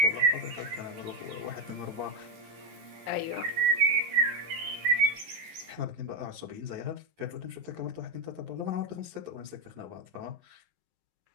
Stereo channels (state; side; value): late; left; 12 ms